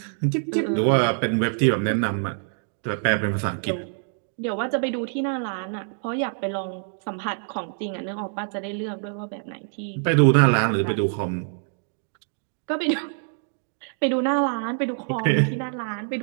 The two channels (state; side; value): silent; left; digital silence